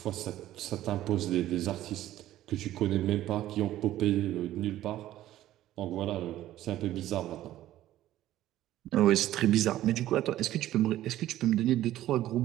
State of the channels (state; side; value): quieter; left; 13.9 dB